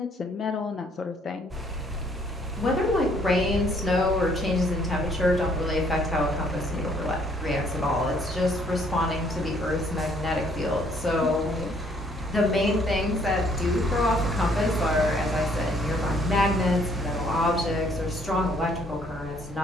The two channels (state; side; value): normal; both; correlation 0.64